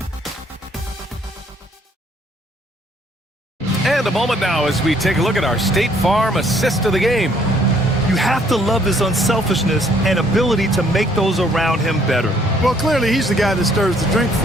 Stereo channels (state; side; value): normal; both; correlation 0.64